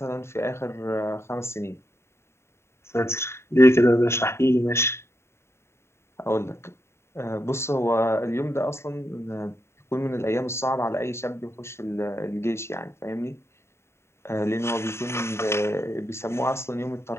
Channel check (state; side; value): late; right; 0.13 ms